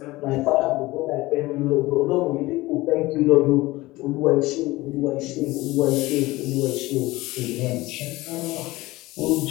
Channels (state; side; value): quieter; right; 19.6 dB